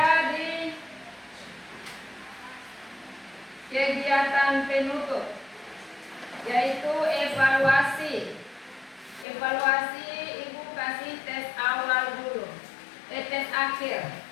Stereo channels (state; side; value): drops out; right; at 9.2 s